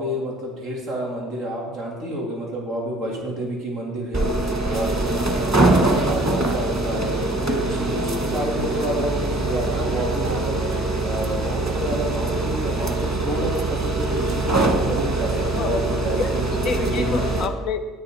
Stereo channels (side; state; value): both; normal; correlation 0.53